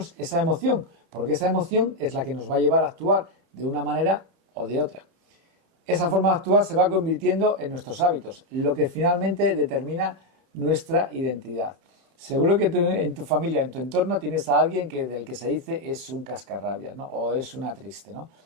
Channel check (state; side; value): late; left; 30 ms